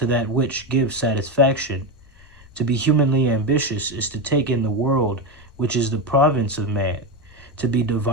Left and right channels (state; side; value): noise; left; rumble, 26 dB below the sound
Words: that which gives satisfaction. To be humanly ambitious is to take in the world which is the province of man. To be